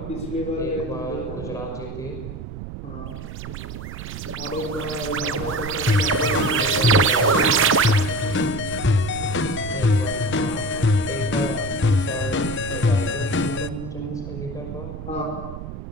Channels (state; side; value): noise; right; rumble, 9 dB below the sound